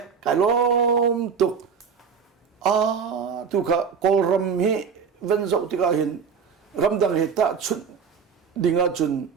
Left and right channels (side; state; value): left; quieter; 6.4 dB